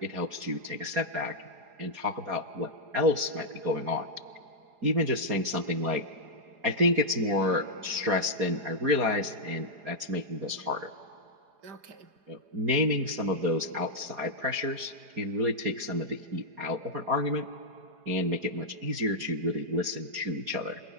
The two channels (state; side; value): late; left; 4.8 ms